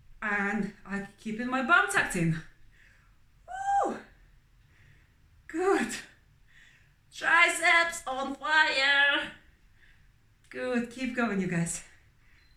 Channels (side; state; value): both; identical; correlation 1.00